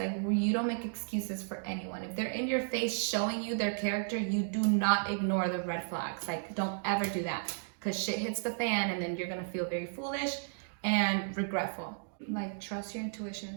you don't make excuses for anyone. If they're in your face showing you their character, you do not ignore the red flags. Like, don't ever do that, because shit hits the fan, and then you're gonna feel very foolish and regretful. Like, trust your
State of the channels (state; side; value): silent; left; digital silence